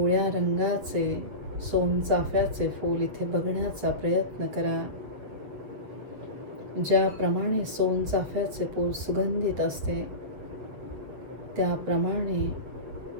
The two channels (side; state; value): left; late; 8.2 ms